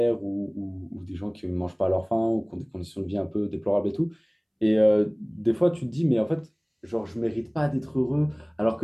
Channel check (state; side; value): identical; both; correlation 1.00